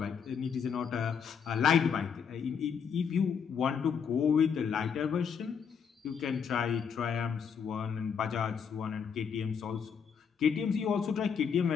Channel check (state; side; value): quieter; right; 6.8 dB